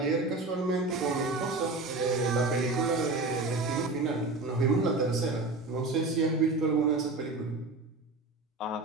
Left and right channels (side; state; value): left; quieter; 3.4 dB